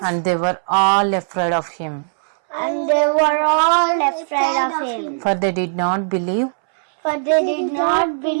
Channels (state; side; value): silent; left; 67 dB below the other